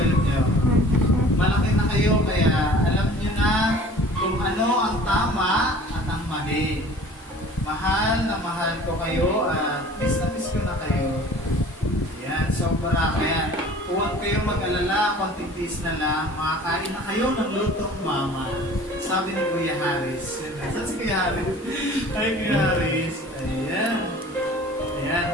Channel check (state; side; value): normal; both; correlation 0.46